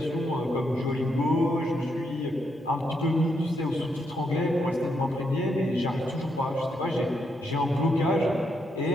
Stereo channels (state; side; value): normal; both; correlation 0.79